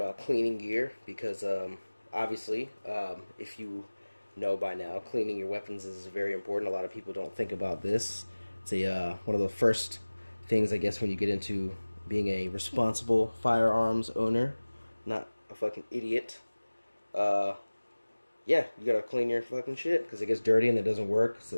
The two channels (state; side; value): inverted; both; correlation -1.00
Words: cleaning gear because obviously, if you know by now, cleaning your weapons is very important. A lot of people don't think about this. It's one of the first things, I guess, when you get into being a responsible firearms owner, not a fucking idiot. Uh, yeah, you gotta clean your fucking shit because it gets dirty and it doesn't work.